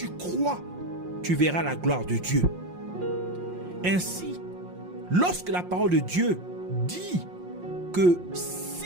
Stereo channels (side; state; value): left; late; 5.6 ms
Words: crois, tu verras la gloire de Dieu ?» Ainsi, lorsque la parole de Dieu dit que